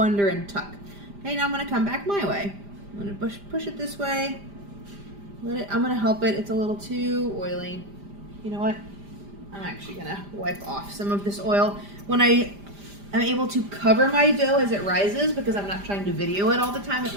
and tuck. Okay, now I'm gonna come back my way. I'm gonna push it this way. I'm gonna help it. It's a little too oily. You know what? I'm actually gonna wipe off some of this oil. When I'm able to cover my dough as it rises because I'm not trying to video it all the time at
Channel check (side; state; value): left; late; 5.0 ms